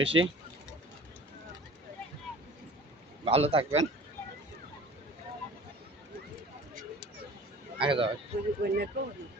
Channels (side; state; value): both; normal; correlation 0.44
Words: বেশি। ভালো থাকবেন। আগে যাও।